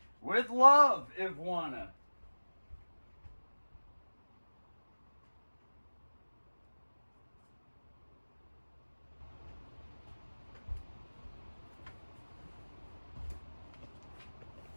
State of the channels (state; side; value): inverted; both; correlation -1.00